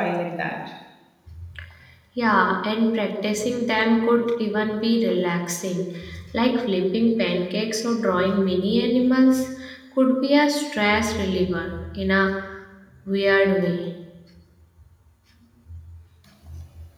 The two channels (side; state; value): both; identical; correlation 1.00